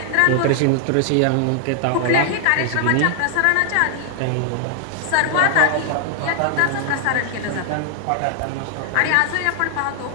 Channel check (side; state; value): both; different; correlation 0.00